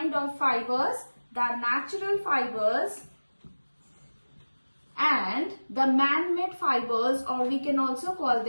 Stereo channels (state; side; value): inverted; both; correlation -1.00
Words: of fibers, the natural fibers and the man-made fibers, or we can also call